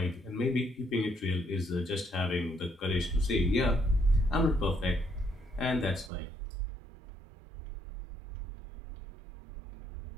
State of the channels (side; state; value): left; drops out; at 6.1 s